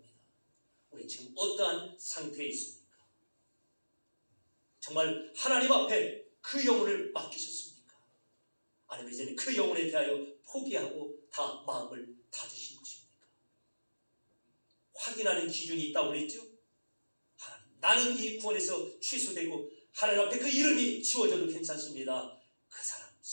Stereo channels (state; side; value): inverted; both; correlation -1.00